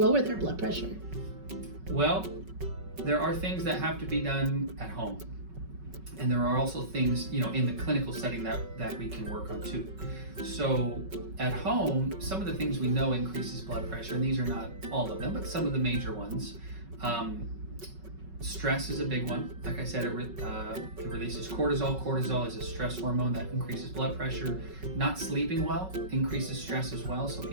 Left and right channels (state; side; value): late; left; 5.3 ms